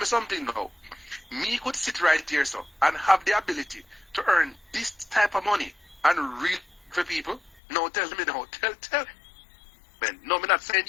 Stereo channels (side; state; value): right; drops out; at 7.6 s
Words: something now. Me could sit right here, so, and have the ability to earn this type of money and read for people. No, tell me now. Tell. Man, no, I'm not saying